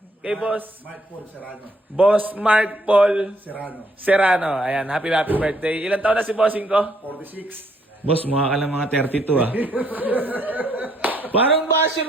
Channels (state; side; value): normal; both; correlation 0.69